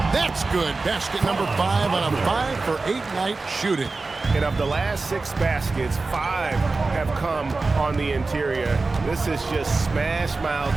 That's good. Basket number 5 on a 5-for-8 night shooting. And of the last 6 baskets, 5 have come on the interior. This is just smash-mouth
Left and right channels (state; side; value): quieter; left; 3.7 dB